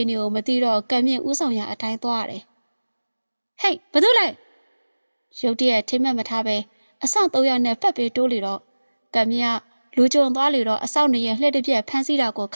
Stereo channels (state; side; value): inverted; both; correlation -1.00